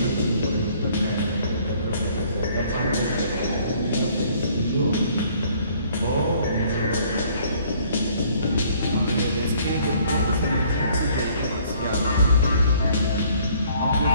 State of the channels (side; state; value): both; inverted; correlation -0.60